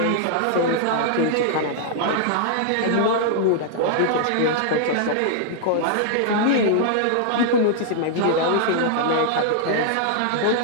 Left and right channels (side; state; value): both; different; correlation -0.01